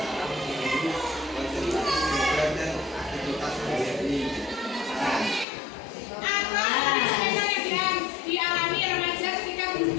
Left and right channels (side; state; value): right; drops out; at 5.5 s